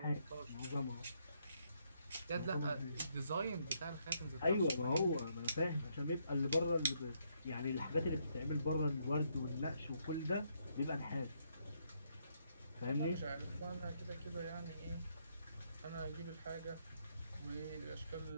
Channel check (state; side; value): inverted; both; correlation -0.74